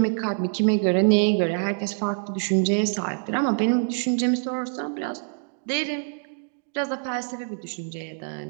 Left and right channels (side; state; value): left; silent; digital silence